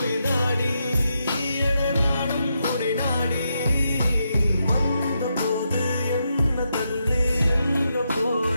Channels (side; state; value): both; inverted; correlation -0.83